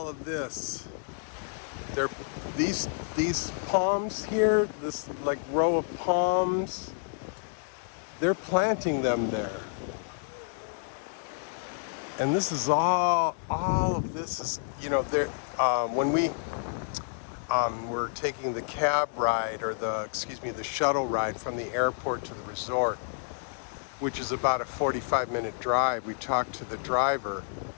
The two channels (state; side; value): silent; right; digital silence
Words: of this, they're these palms here, this like row of palms, they're planting them there. And this is all of this is, there. When we were taking the cab ride, or the shuttle ride from the airport to the resort, which is about a 45-minute drive, we talked to the driver